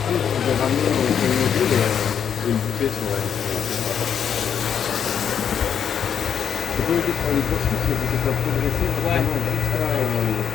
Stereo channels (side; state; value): right; quieter; 8.0 dB